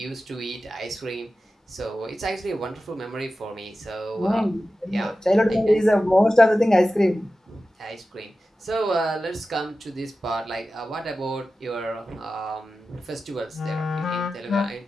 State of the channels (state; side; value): normal; both; correlation 0.94